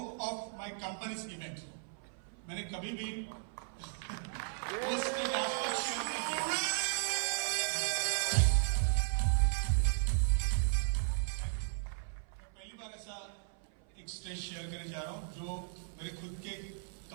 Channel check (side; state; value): left; silent; 54 dB below the other